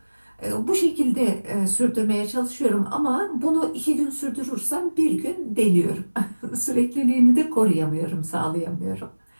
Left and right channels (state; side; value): inverted; both; correlation -1.00